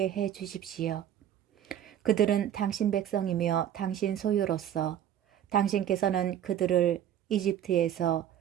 해 주십시오. 그들은 당신 백성이며 당신 소유로서 당신께서는 그들을 이집트에서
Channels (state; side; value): quieter; left; 10.5 dB